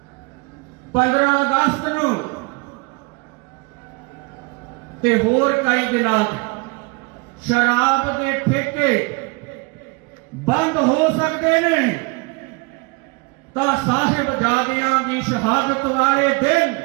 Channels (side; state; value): left; quieter; 27.9 dB